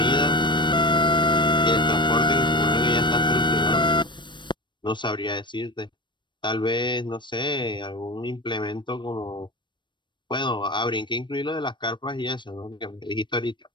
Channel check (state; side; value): late; right; 0.22 ms